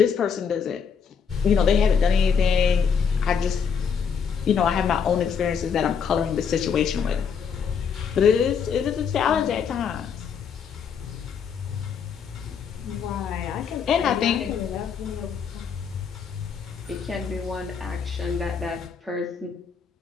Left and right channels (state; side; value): quieter; right; 6.6 dB